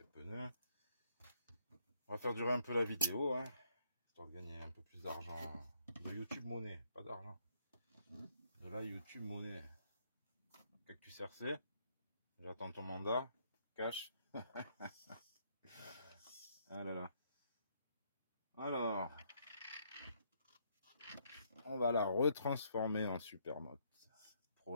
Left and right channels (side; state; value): both; inverted; correlation -0.71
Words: pneus, on va faire durer un peu la vidéo, hein, histoire de gagner un peu plus d'argent. De YouTube monnaie, pas d'argent. De la YouTube monnaie. Cactus RC, j'attends ton mandat. Cash. Ah là là. Alors, on va la retransformer en Supermoto